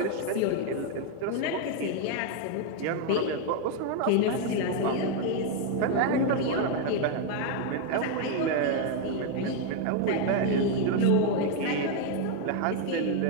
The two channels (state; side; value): different; both; correlation 0.01